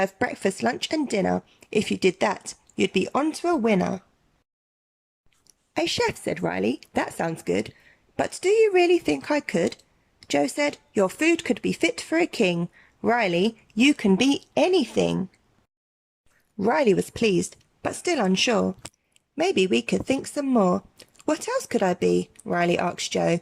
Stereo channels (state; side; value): identical; both; correlation 1.00